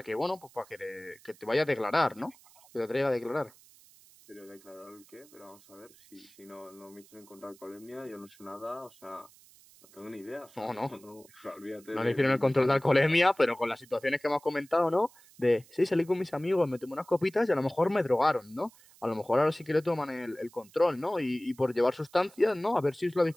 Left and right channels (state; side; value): noise; right; hiss, 26 dB below the sound